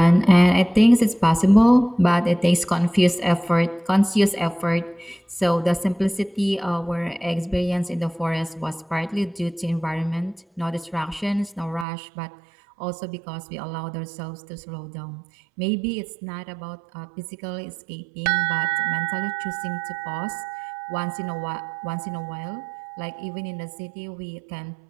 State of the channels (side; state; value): left; drops out; at 11.9 s